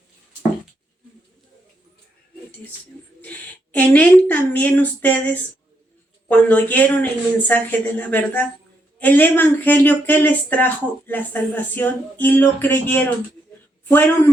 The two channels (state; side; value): normal; both; correlation 0.78